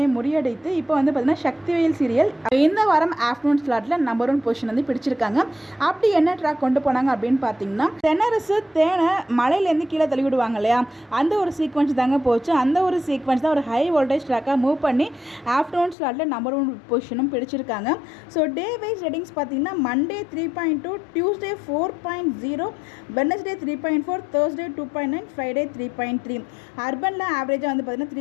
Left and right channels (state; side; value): drops out; right; at 16.0 s